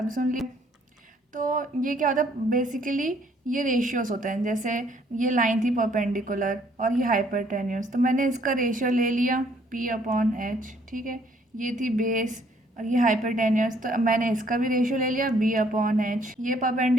सुन ली। तो ये क्या होता है बेसिकली, ये रेशियोज होते हैं। जैसे ये लाइन थी परपेंडिकुलर और ये हाइपरटेन्यूस, तो मैंने इसका रेशियो ले लिया P/H, ठीक है। ये थी बेस और ये हाइपरटेन्यूस, तो अब मैंने इसका भी रेशियो ले लिया B/H। ये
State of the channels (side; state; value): both; normal; correlation 0.64